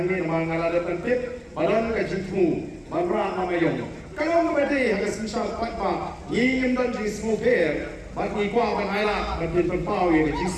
mengalami tentip, badan kecilmu, barang mamayong. Kalau memberi harga semisal patpa, ingin dan jenis mobil, bagi kuah banailah, bagi tempau yang jenis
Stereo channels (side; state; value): both; identical; correlation 1.00